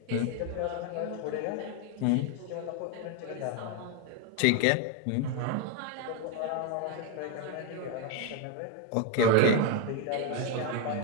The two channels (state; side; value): different; both; correlation 0.01